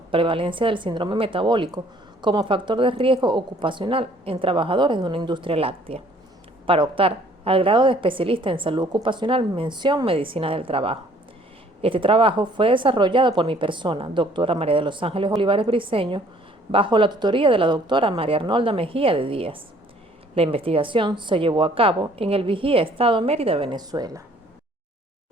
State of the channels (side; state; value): both; normal; correlation 0.58